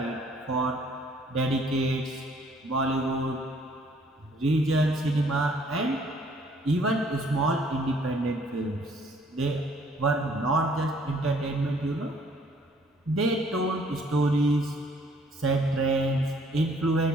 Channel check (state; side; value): normal; both; correlation 0.61